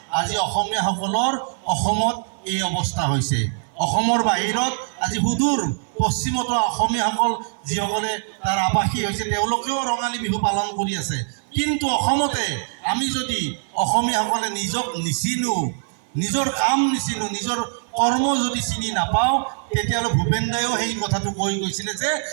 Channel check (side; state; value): left; silent; 55 dB below the other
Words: আজি অসমীয়াসকলৰ অসমত এই অৱস্থা হৈছে। অসমৰ বাহিৰত আজি সুদূৰ পশ্চিমতো অসমীয়াসকল যিসকলে তাৰ আৱাসী হৈছে তেওঁলোকেও ৰঙালী বিহু পালন কৰি আছে। কিন্তু অসমতে আমি যদি অসমীয়াসকলে নিজক নিচিনো, নিজৰ কাম নিচিনো, নিজৰ কৰ্ম যদি চিনি নাপাওঁ, তেতিয়াহ'লে ভূপেন দায়েও সেই কথাটো কৈ গৈছিলে যে